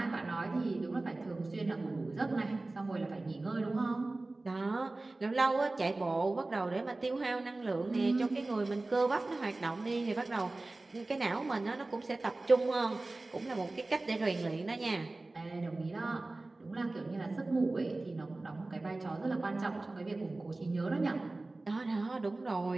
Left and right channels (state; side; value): quieter; left; 3.1 dB